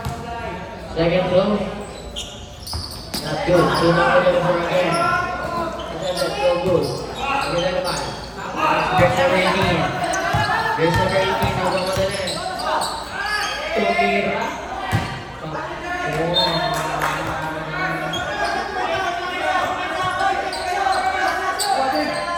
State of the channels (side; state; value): both; identical; correlation 1.00